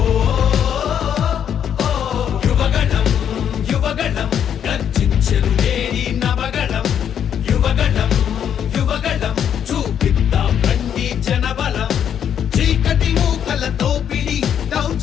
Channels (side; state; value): right; quieter; 8.9 dB